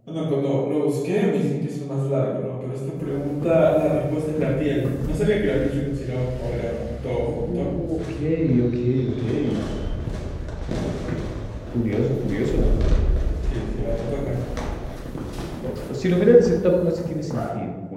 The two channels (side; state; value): both; identical; correlation 1.00